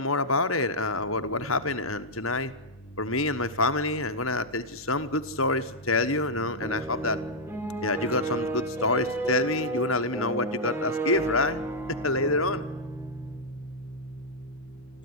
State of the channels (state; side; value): normal; both; correlation -0.06